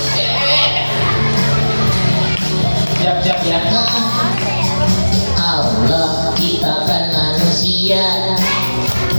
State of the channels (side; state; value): both; inverted; correlation -1.00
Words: Siap-siap ya. Allah ciptakan manusia,